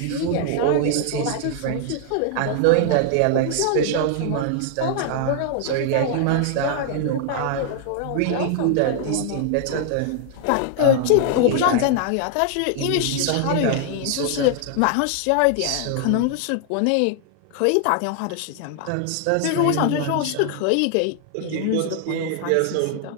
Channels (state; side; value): different; both; correlation 0.00